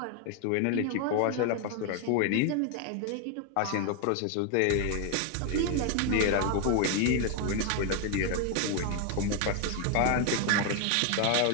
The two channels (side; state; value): both; different; correlation 0.01